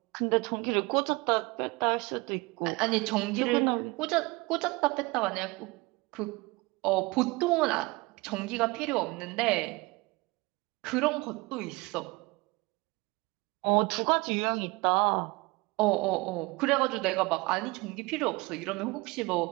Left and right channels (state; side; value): quieter; left; 24.3 dB